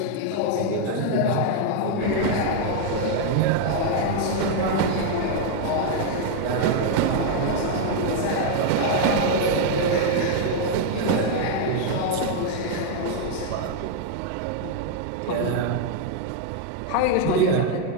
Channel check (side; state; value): both; different; correlation 0.00